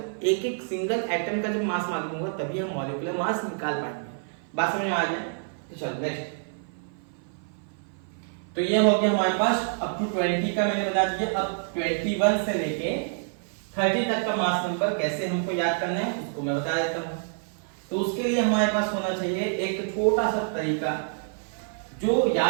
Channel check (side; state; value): left; silent; 55 dB below the other